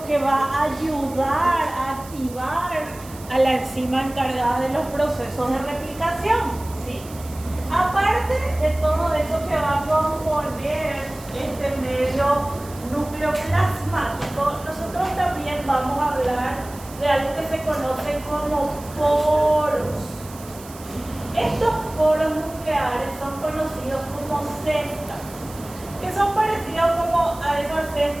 que va a ayudar a activar a la enzima encargada de los procesos de replicación, ¿sí? Aparte de todo eso que va a componer este medio nucleoplasmático, nosotros también vamos a hablar de algo que se conoce como poros. Estos poros nucleares son conocidos como cestas, que son parecidos como a esa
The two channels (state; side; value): noise; right; hiss, 18 dB below the sound